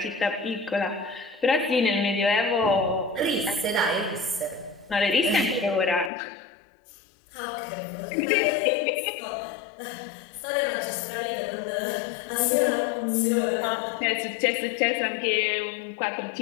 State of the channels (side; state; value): right; drops out; at 6.1 s